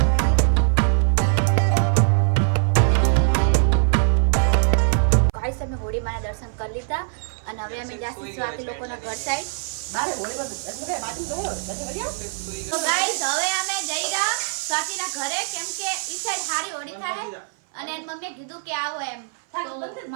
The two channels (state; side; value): silent; left; 56 dB below the other